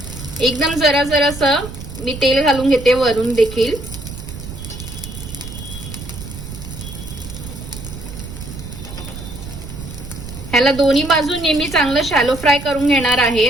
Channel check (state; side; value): noise; right; rumble, 11 dB below the sound